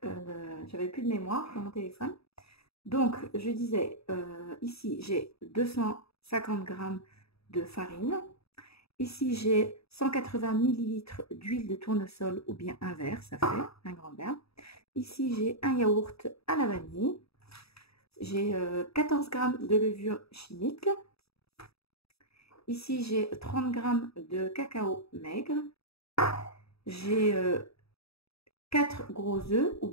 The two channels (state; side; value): late; right; 0.77 ms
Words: j'avais plus de mémoire dans mon téléphone. Donc je disais, ici j'ai 250 grammes de farine. Ici j'ai 180 millilitres d'huile de tournesol ou bien un verre, ça fait un grand verre. Ici j'ai un yaourt à la vanille. J'ai 14 grammes de levure chimique. Ici, j'ai 30 grammes de cacao maigre. J'ai 4 gros œufs ou